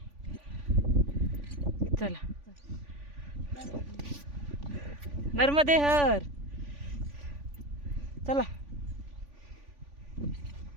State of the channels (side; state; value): left; late; 3.5 ms